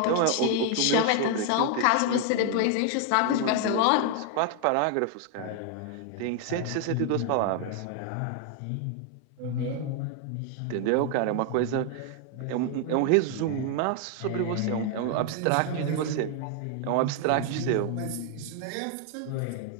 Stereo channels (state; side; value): different; both; correlation 0.00